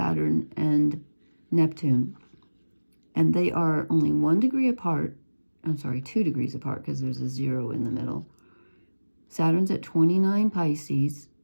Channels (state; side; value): inverted; both; correlation -1.00